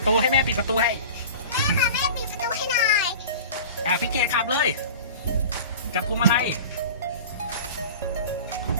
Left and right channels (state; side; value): inverted; both; correlation -0.37